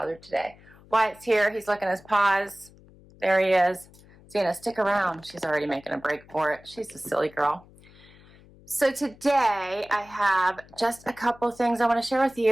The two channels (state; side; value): noise; left; hum, 25 dB below the sound